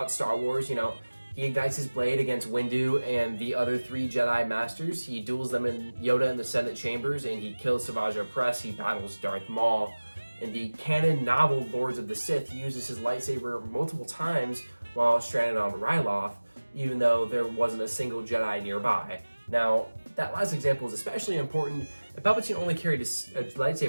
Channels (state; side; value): inverted; both; correlation -1.00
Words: Star Wars, he ignites his blade against Windu and the other three Jedi Masters. He duels them in Yoda in the Senate chambers, and he kills Savage Opress. He battles Darth Maul. In the canon novel Lords of the Sith, he uses his lightsaber multiple times while stranded on Ryloth, even though there wasn't a single Jedi nearby. Now, that last example is especially important. If Palpatine only carried a